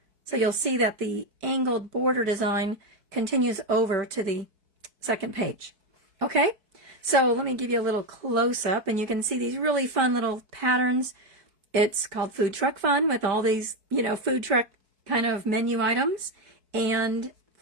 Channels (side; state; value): left; late; 4.6 ms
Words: So you'll see that the angled border design continues over to the second page. Okay, so let me give you a little close-up, and you can see these really fun little patterns. It's called Food Truck Fun with all these, food truck kind of menu items and